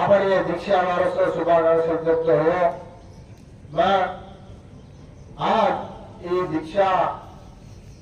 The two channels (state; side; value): identical; both; correlation 1.00